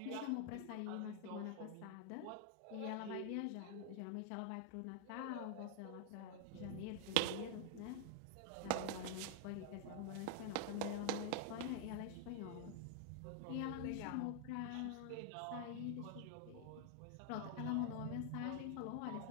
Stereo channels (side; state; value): both; different; correlation 0.00